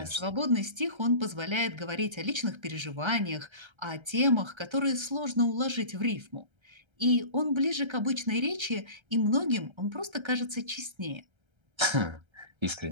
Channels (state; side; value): late; left; 1.3 ms